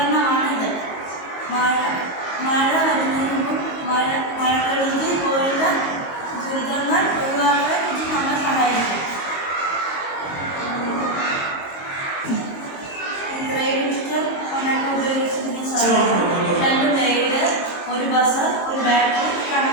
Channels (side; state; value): right; late; 22 ms